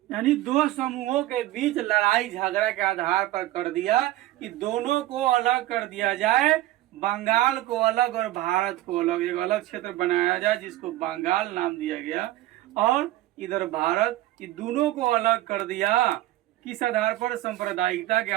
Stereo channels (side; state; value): left; quieter; 15.8 dB